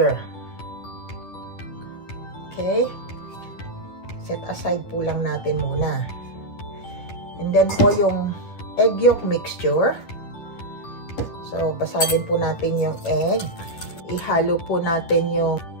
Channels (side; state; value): right; late; 10 ms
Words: Okay? Set aside po lang natin muna. And then po yung egg yolk mixture. So, basagin po natin yung egg. Ihalo po natin yung